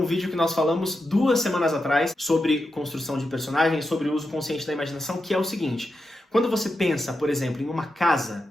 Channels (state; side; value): normal; both; correlation 0.88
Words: vídeo que nós falamos 2 semanas atrás sobre construção de personagens, sobre o uso consciente da imaginação, que é o seguinte. Quando você pensa, por exemplo, em uma